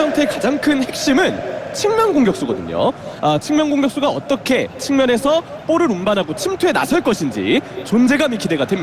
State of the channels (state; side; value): identical; both; correlation 1.00